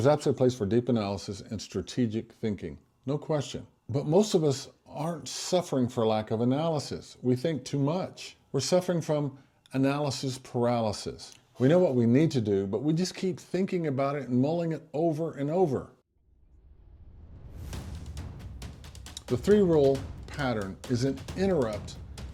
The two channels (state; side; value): identical; both; correlation 1.00